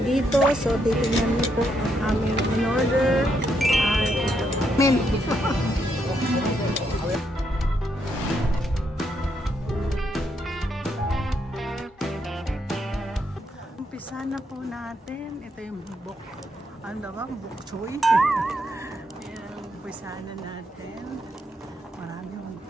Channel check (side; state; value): both; normal; correlation 0.77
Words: dito. So, titingnan niyo po ang aming in-order. Umpisa na po natin. Ito yung bok. Ano ba? Bok choy. Ayan, umpisa na natin. Marami yung